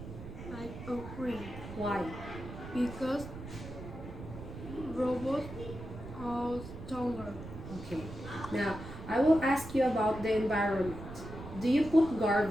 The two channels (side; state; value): right; noise; rumble, 11 dB below the sound